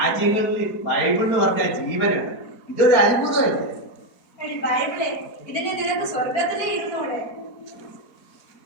ബൈബിൾ എന്ന് പറഞ്ഞാൽ ജീവനാണ്. ഇതൊരു അത്ഭുതമല്ലേ? എടി ബൈബിളെ, ഇതിനെ നിനക്ക് സ്വർഗത്തിലേ ഇരുന്നൂടെ?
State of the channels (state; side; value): late; right; 4.3 ms